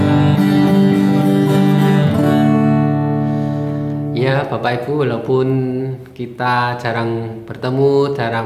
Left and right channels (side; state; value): both; identical; correlation 1.00